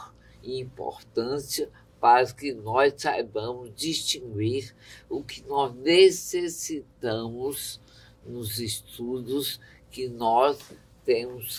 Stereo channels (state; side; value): identical; both; correlation 1.00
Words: e importância para que nós saibamos distinguir o que nós necessitamos nos estudos que nós